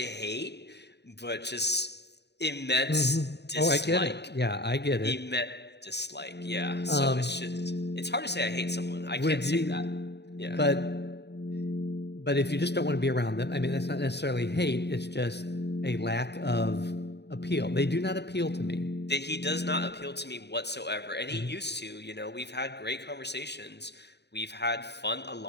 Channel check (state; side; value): late; right; 0.49 ms